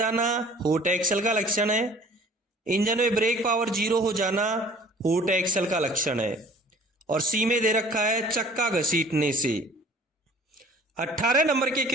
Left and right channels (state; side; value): normal; both; correlation 0.50